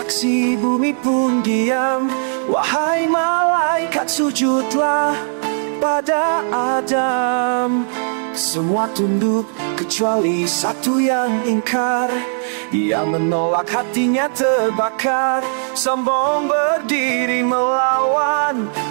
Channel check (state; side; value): silent; left; digital silence